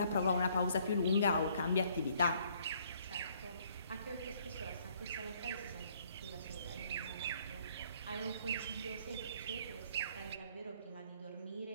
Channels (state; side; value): inverted; both; correlation -0.64